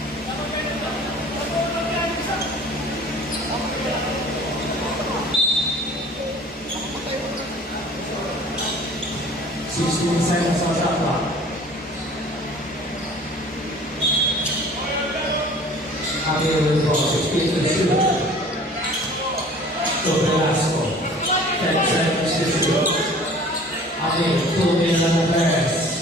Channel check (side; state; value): both; normal; correlation 0.47